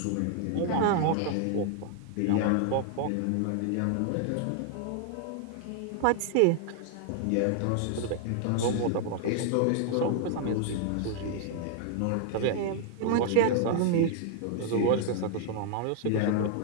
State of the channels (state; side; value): different; both; correlation 0.00